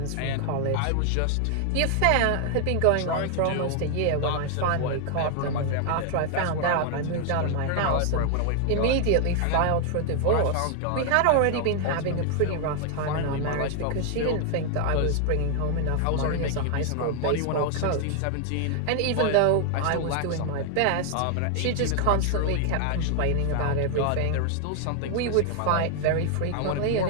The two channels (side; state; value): both; different; correlation 0.00